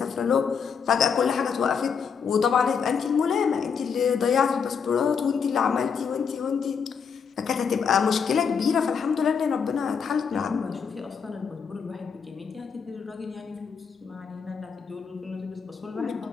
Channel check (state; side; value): quieter; right; 6.4 dB